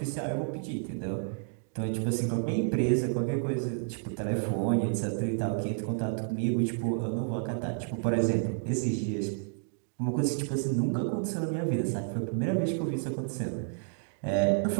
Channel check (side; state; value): left; silent; 57 dB below the other